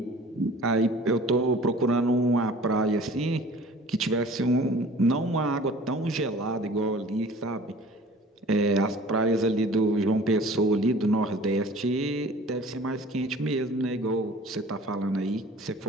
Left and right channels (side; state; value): both; normal; correlation 0.47